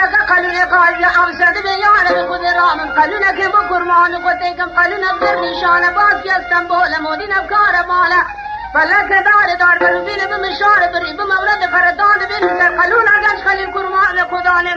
نفسك قالوا قال أوسد بيانا بخذ رامن قالوا لك بكرمان قتيكم قالوا نبذر نشانة باس يا اسطنبول مودينا بكارة مالا فلك دار بلوبين بمشارة بريب مولد فردان بنسر قالوا لك خلي الكرمان خدان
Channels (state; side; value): identical; both; correlation 1.00